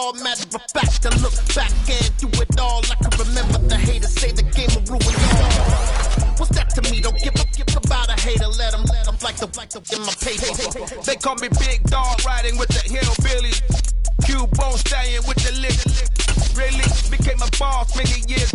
Matter of fact, I look back and do it all. I can remember the haters say the game will ruin all. What's that to me? Don't give about a hater. Let them like the in my paper. They call me Big Dog, riding with the hillbillies. Cubone staying with the lick. Really became a boss many years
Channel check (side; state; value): both; identical; correlation 1.00